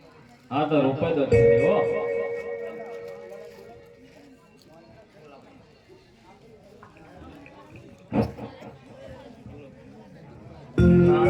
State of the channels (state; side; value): identical; both; correlation 1.00